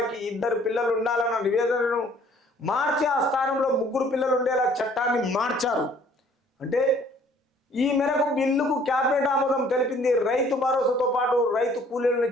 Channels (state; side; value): normal; both; correlation 0.57